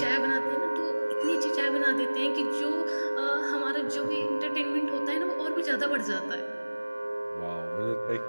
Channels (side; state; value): both; inverted; correlation -1.00